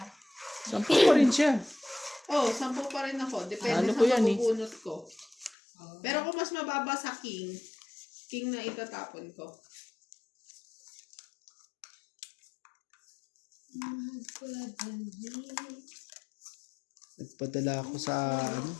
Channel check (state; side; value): drops out; right; at 5.6 s